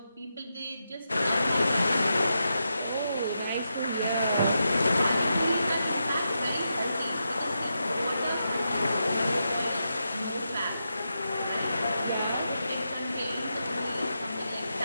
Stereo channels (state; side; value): inverted; both; correlation -0.86